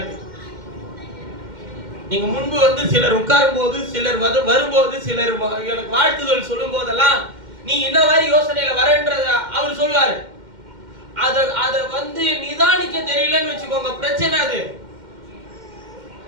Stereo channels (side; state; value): left; late; 2.1 ms